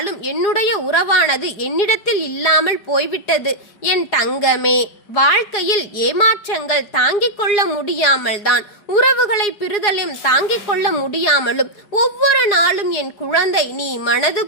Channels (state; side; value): late; right; 4.8 ms